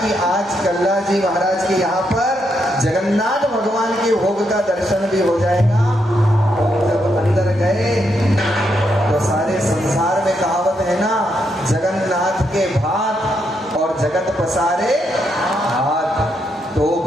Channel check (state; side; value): normal; both; correlation 0.79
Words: आज कल्ला जी महाराज के यहाँ पर जगन्नाथ भगवान के भोग का दर्शन भी हो जाएगा। जब अंदर गए तो सारे संसार में कहावत है ना, जगन्नाथ के भात और जगत पसारे हाथ, तो